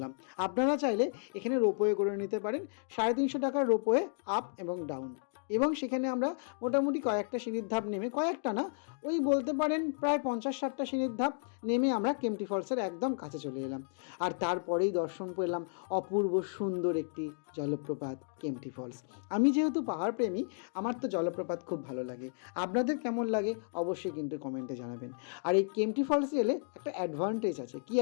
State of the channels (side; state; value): right; silent; digital silence